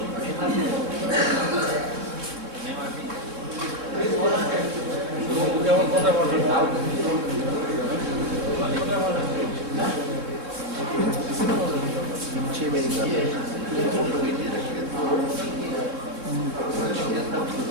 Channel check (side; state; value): left; late; 3.6 ms